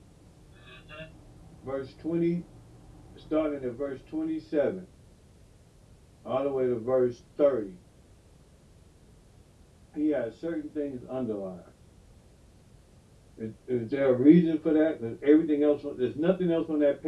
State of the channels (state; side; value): identical; both; correlation 1.00